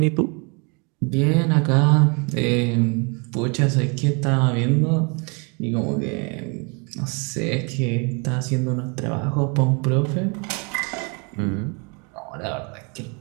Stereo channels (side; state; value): left; quieter; 32.9 dB